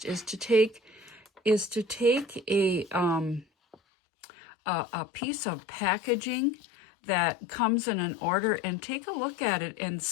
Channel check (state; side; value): drops out; right; at 3.8 s